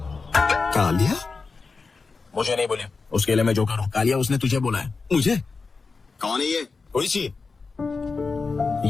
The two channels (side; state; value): right; quieter; 4.4 dB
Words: कालिया? मुझे नहीं बोले, उसके लिए मैं जो करूँ। कालिया, उसने तुझे बोला है। मुझे? कौन है ये? ओइशी,